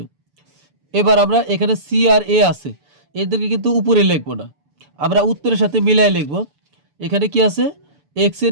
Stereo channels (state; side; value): late; left; 6.9 ms